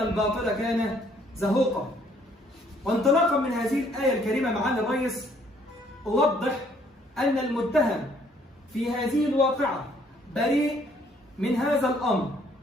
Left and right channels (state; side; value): normal; both; correlation 0.64